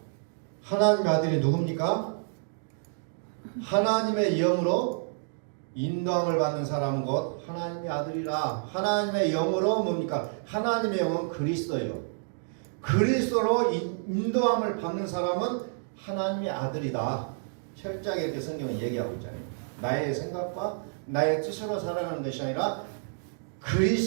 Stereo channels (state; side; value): silent; left; digital silence